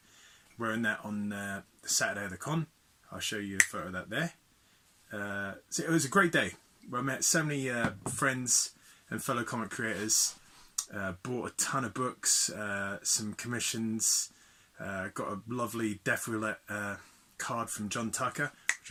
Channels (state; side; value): identical; both; correlation 1.00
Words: Wearing that on the Saturday of the con. I'll show you a photo of that there. So it was a great day. I met so many friends and fellow comic creators. Bought a ton of books, some commissions. Got a lovely Death Roulette card from John Tucker, which